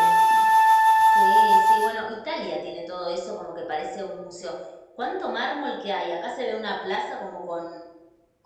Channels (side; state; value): both; identical; correlation 1.00